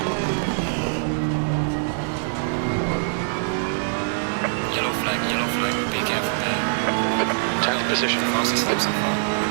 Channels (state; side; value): silent; left; digital silence